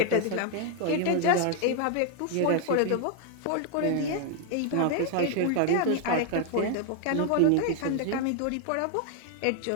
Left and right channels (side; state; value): both; different; correlation 0.00